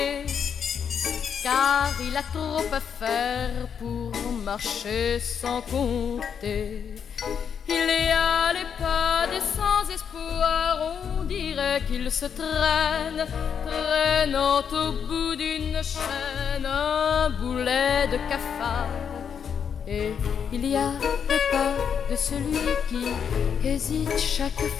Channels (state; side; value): quieter; right; 7.4 dB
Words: car il a trop à faire pour marcher sans compter. Il y a les pas des sans-espoir, on dirait qu'ils se traînent, traînant au bout d'une chaîne un boulet de cafard. Et il y a les pas de celui qui hésite chaque